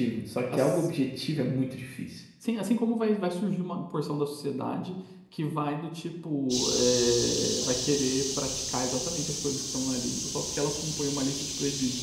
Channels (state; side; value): identical; both; correlation 1.00